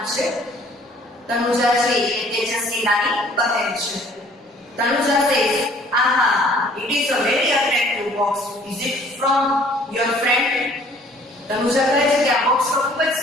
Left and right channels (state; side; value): normal; both; correlation 0.56